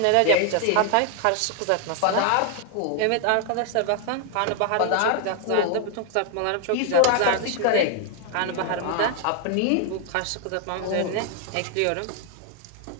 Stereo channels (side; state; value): both; different; correlation 0.00